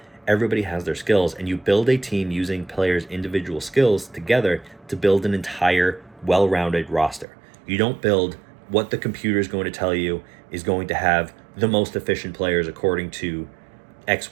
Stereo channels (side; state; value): left; drops out; at 7.2 s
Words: Everybody has their skills, and you build a team using players' individual skills together to build an entire well-rounded roster. You don't build what the computer is going to tell you is going to have the most efficient players according to